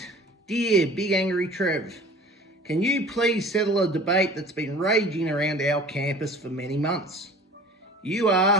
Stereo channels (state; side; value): normal; both; correlation 0.44